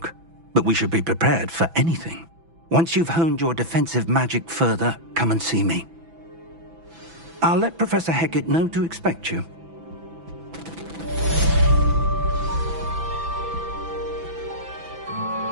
but we should be prepared for anything. Once you've honed your defensive magic further, come and see me. I'll let Professor Hecat know to expect you.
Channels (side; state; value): left; late; 6.0 ms